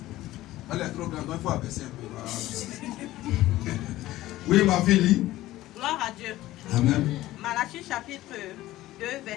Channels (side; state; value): right; quieter; 16.1 dB